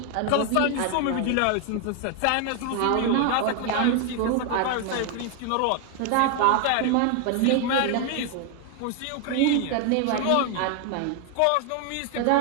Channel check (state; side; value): different; both; correlation 0.00